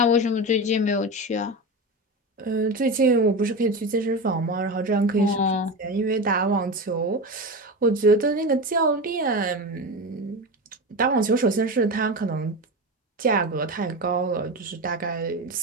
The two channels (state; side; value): normal; both; correlation 0.22